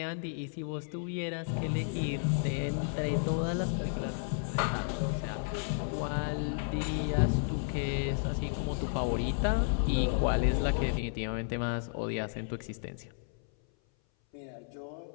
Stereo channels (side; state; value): right; silent; 56 dB below the other